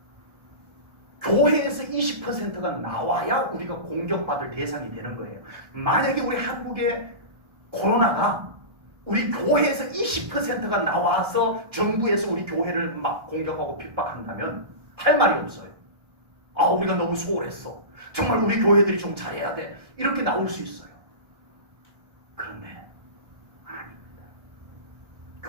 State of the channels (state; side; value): late; left; 1.3 ms